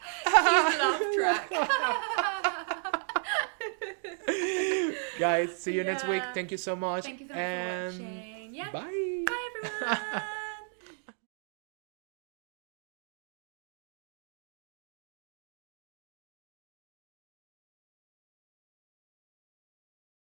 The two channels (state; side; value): silent; left; 55 dB below the other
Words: Cute laugh track. Guys, see you next week. Thank you so much. Thank you so much for watching. Bye. Bye everyone.